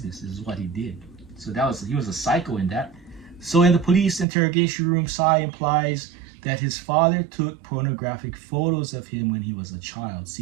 Is what he did. So he was a psycho in that. So in the police interrogation room, Sai implies that his father took pornographic photos of him when he was a child.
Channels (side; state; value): left; drops out; at 4.2 s